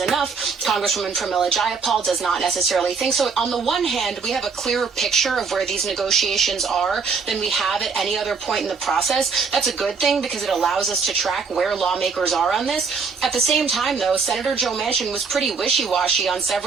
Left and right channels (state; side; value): quieter; left; 5.2 dB